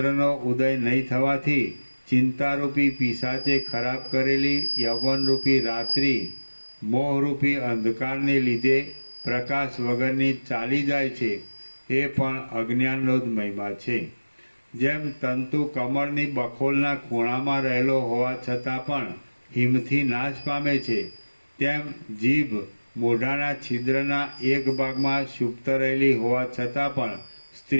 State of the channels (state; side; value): inverted; both; correlation -1.00